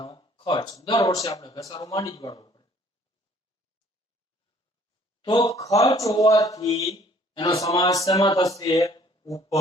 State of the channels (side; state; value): both; normal; correlation 0.58